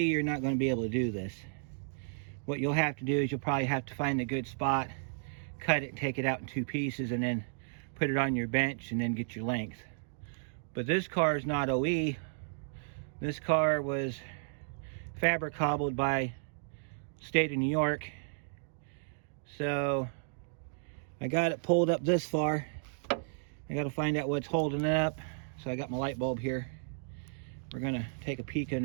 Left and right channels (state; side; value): silent; left; digital silence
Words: not going to be able to do this. What you'll have to do is you'll probably have to find a good spot, cut it, take it out in 2 pieces, and then put it on your bench and then get your length. But this car is not OE. This car was fabric cobbled by state of New York. So I got it pulled up this far. I got to find out what's holding it up. So I got my light bulb here. We're gonna take a peek